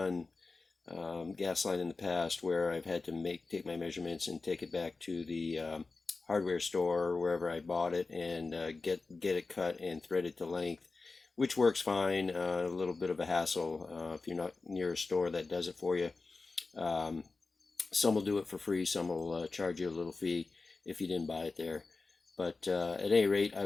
gas line in the past where I've had to take my measurements and take it back to the hardware store or wherever I bought it and get it cut and threaded to length, which works fine. A little bit of a hassle if you're not near a store that does it for you. Some will do it for free, some will charge you a little fee if you didn't buy it there. But at any rate, I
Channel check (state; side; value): quieter; right; 3.9 dB